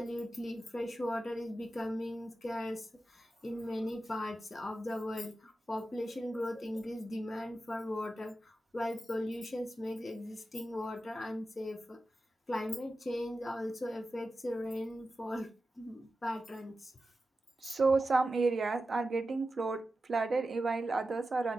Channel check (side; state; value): both; normal; correlation 0.92